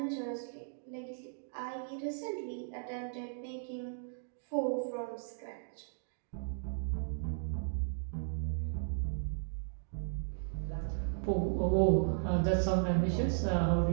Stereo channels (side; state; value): left; silent; digital silence